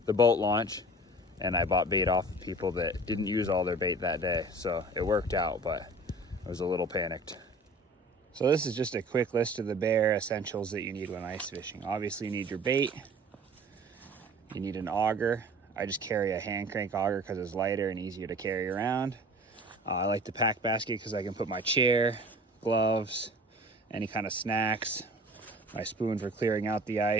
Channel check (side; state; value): both; normal; correlation 0.44